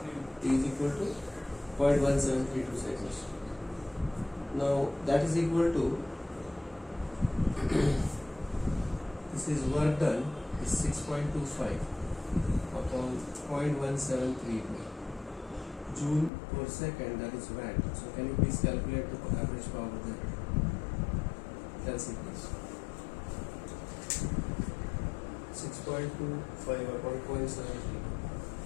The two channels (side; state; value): right; drops out; at 16.3 s